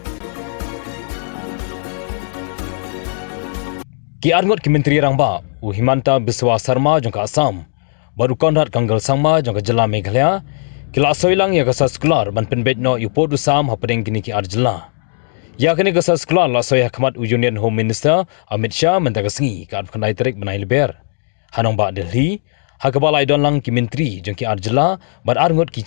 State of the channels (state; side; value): silent; right; digital silence